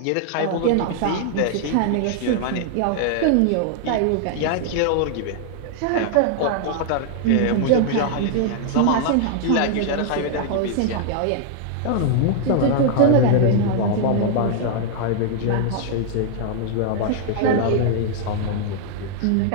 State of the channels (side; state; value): both; different; correlation 0.00